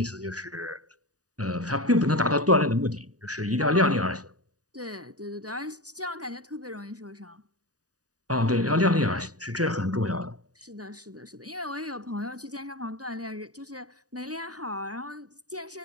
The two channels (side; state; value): left; late; 0.67 ms